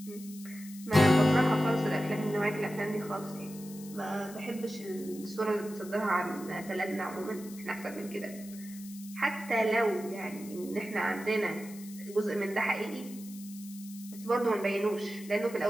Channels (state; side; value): noise; left; hiss, 17 dB below the sound